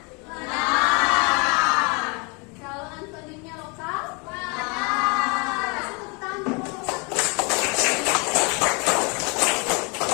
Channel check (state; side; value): quieter; right; 31.4 dB